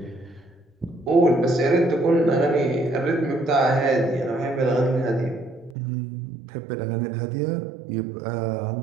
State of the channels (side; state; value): left; drops out; at 5.8 s